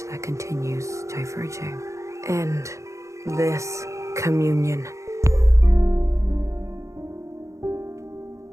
continues diverging. End this communion.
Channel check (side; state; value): left; late; 0.15 ms